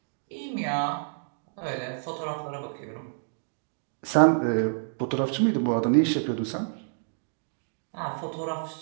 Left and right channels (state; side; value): silent; left; digital silence